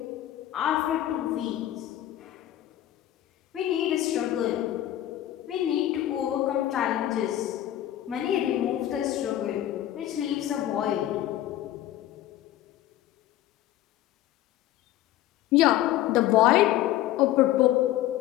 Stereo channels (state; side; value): quieter; right; 13.4 dB